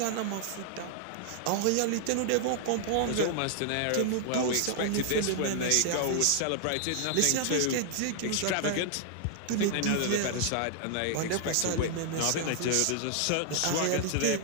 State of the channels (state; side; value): different; both; correlation 0.00